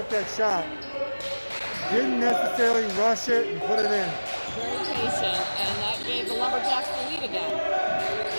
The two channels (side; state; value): both; inverted; correlation -1.00